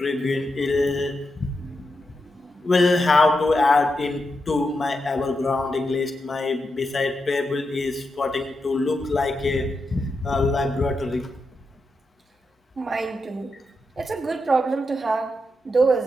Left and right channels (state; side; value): normal; both; correlation 0.86